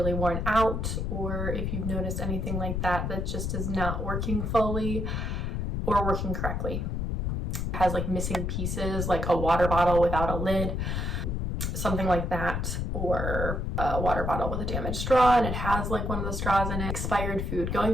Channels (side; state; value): left; noise; rumble, 1 dB below the sound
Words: worn out, or if you've noticed anything like that that just is not working fully or working correctly. It has like missing pieces, like a water bottle without a lid, something like that, or a water bottle with a damaged straw and it has like one of the straws in it. Expired food,